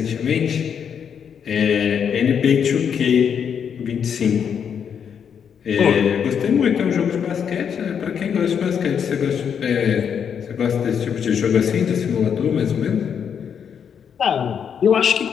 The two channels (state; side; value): quieter; right; 7.6 dB